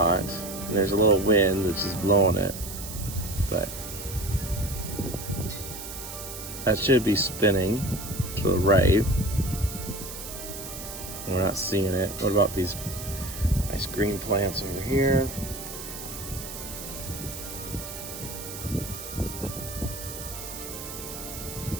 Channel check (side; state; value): right; noise; hiss, 10 dB below the sound